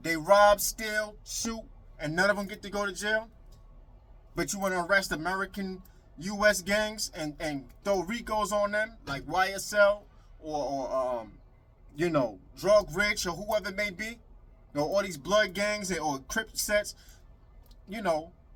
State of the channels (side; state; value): both; identical; correlation 1.00